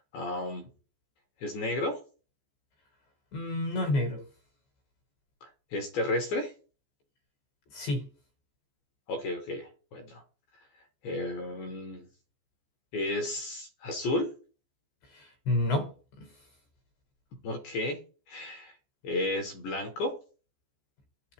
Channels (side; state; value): right; late; 14 ms